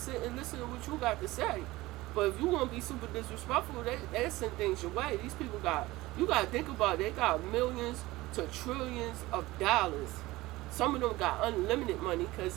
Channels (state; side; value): quieter; left; 19.1 dB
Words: and listen to what you got to say. But if you want to be super disrespectful, they send things your way. These people you got to think about it, they got millions to trillions of dollars. Some of them got unlimited money